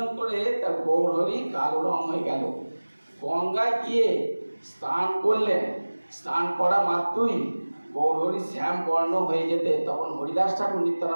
করে তার গৌরহরি কালো রং হয়ে গেল। গঙ্গায় গিয়ে স্নান করলেন, স্নান করা মাত্রই গৌরহরি শ্যাম বর্ণ হয়ে যেতে, তখন হরিদাস ঠাকুর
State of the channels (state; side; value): inverted; both; correlation -1.00